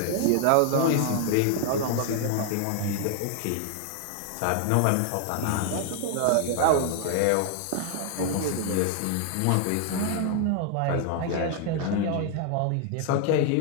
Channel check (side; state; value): both; different; correlation 0.00